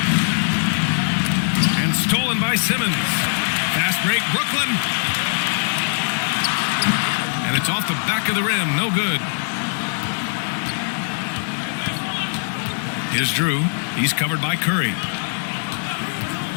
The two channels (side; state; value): right; silent; digital silence